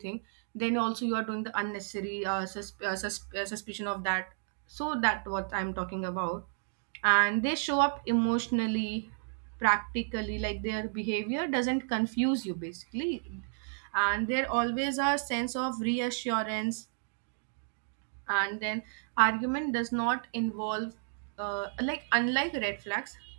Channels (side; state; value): left; silent; digital silence